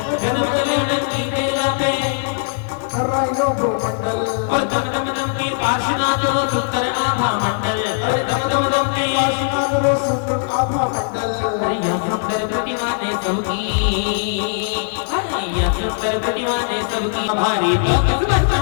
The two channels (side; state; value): right; silent; 66 dB below the other